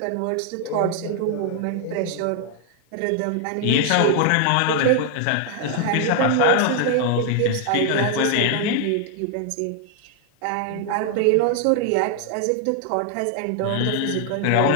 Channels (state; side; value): different; both; correlation 0.00